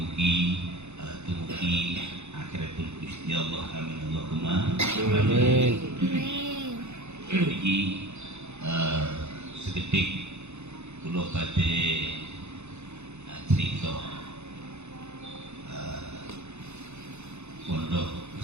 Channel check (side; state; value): left; late; 0.82 ms